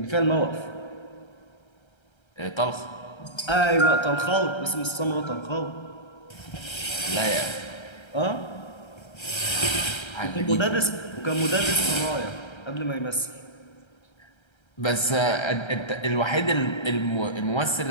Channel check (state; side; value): late; right; 1.3 ms